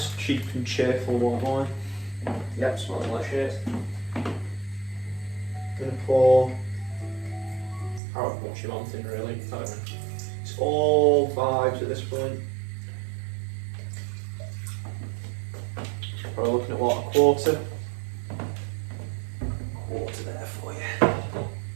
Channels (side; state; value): left; drops out; at 8.0 s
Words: cheap and cheerful white wine. Yep, smelling like shit. Going to pour however much you want in, really. I don't know. It's all vibes at this point. Probably looking at what, a quarter? hot water there for you.